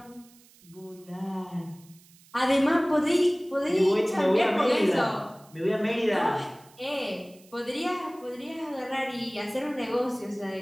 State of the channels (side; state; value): right; noise; hiss, 27 dB below the sound